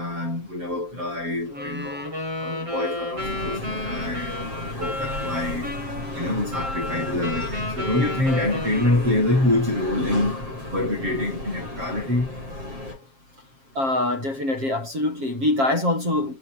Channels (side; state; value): left; late; 7.5 ms